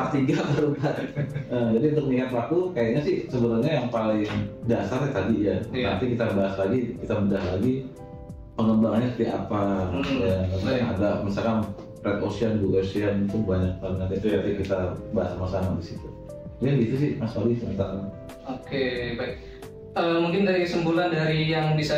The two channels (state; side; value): identical; both; correlation 1.00